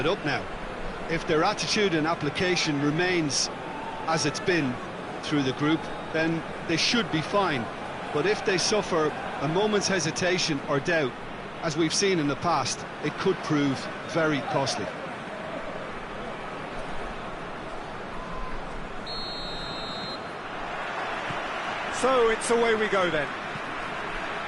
up now. If their attitude and application remains as it's been through the group, then they should be fine. But if they suffer a moment's hesitation or doubt, as we've seen in the past, it could prove very costly. So it's away we go then.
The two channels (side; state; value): both; identical; correlation 1.00